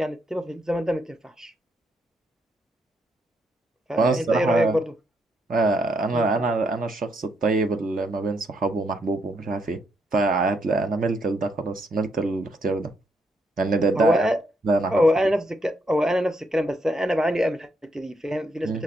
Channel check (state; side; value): normal; both; correlation 0.76